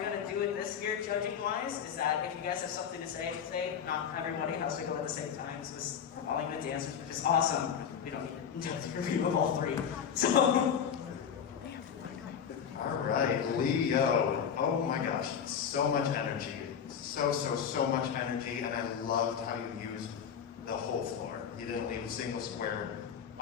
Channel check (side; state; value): right; quieter; 7.8 dB